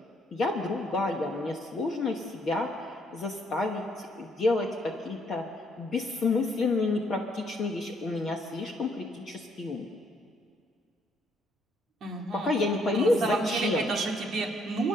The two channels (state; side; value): normal; both; correlation 0.69